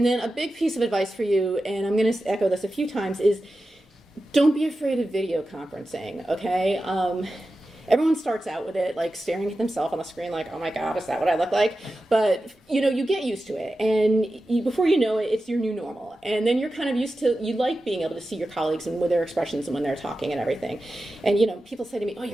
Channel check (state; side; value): normal; both; correlation 0.93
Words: a big piece of advice for you, and I'm going to echo this a few times, is don't be afraid of video conferencing, okay? Everyone starts out with it like staring at themselves on the screen like, oh my God, is that what I look like? But you get used to it, and before you know it, it's your new normal. And then you're kind of used to, you like being able to see your colleagues and with their expressions and when they're talking and everything. And people say to me, oh,